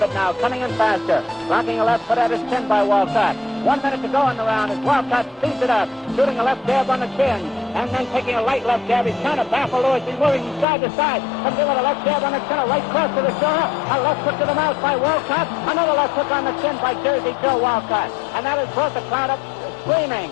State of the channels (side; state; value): right; drops out; at 10.7 s